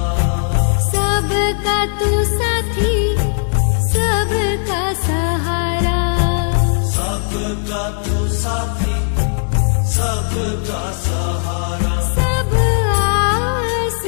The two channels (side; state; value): right; silent; 68 dB below the other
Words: सबका तू साथी सबका सहारा सबका तू साथी सबका सहारा सब